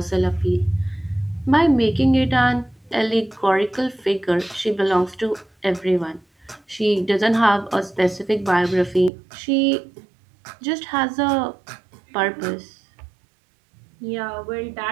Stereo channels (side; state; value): left; drops out; at 9.1 s